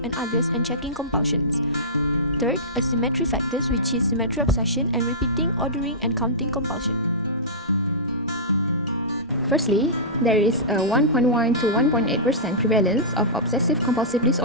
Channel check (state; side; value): normal; both; correlation -0.18